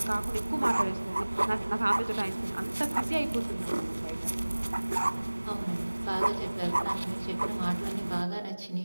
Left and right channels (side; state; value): both; inverted; correlation -1.00